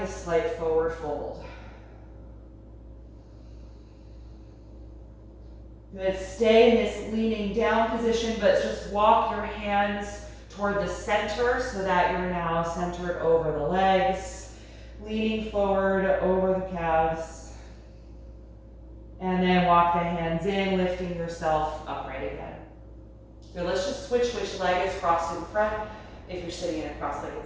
a slight forward fold. Good, stay in this leaning down position, but just walk your hands toward the center so that you're now centered over the legs, leaning forward over the calves. And then walk the hands in, lifting yourself upright again. Good, let's just switch which leg is crossed in front if you're sitting in a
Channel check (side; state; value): both; identical; correlation 1.00